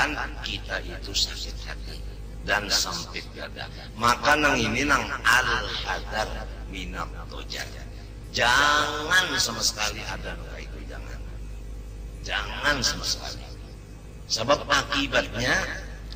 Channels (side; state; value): both; identical; correlation 1.00